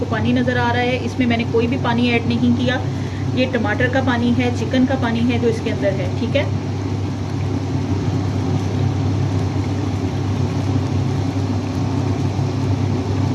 पानी नज़र आ रहा है। इसमें मैंने कोई भी पानी ऐड नहीं किया, ये टमाटर का पानी है, चिकन का पानी है जो इसके अंदर है। ठीक है,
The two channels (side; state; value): both; identical; correlation 1.00